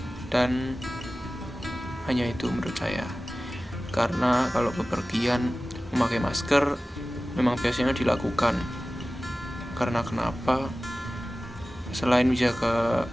dan hanya itu menurut saya. Karena kalau bepergian memakai masker memang biasanya dilakukan. Karena kenapa? Selain menjaga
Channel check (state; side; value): normal; both; correlation 0.96